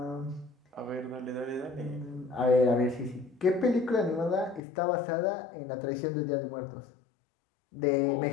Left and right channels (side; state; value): right; drops out; at 4.6 s